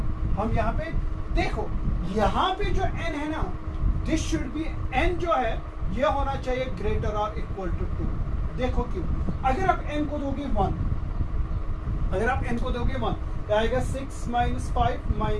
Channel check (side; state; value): both; identical; correlation 1.00